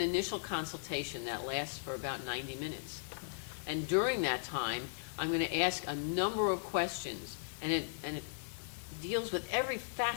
initial consultation that lasts for about 90 minutes. And during that time, I'm going to ask a number of questions, and it deals with every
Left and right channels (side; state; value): right; silent; digital silence